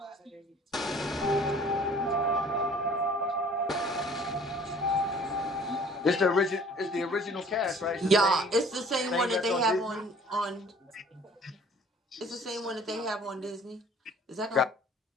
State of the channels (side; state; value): both; normal; correlation 0.52